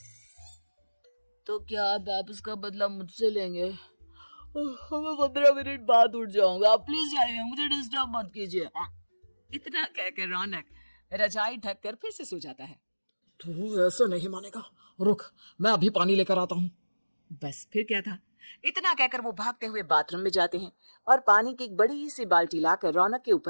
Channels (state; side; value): inverted; both; correlation -1.00